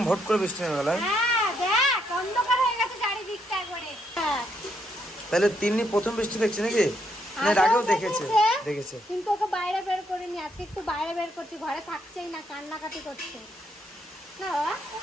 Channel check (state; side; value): normal; both; correlation 0.75